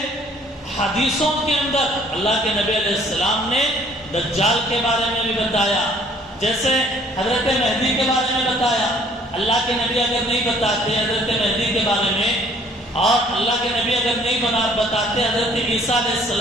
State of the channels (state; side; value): normal; both; correlation 0.58